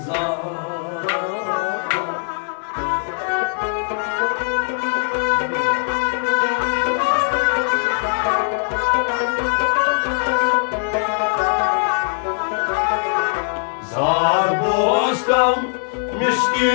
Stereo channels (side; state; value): right; silent; digital silence